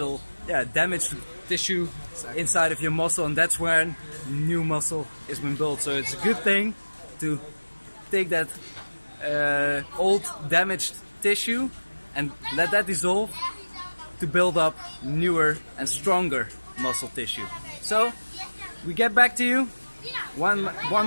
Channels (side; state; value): both; inverted; correlation -1.00